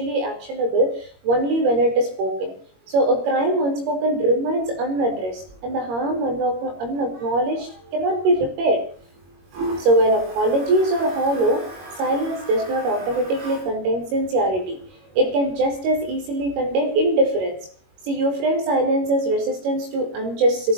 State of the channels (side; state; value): left; late; 21 ms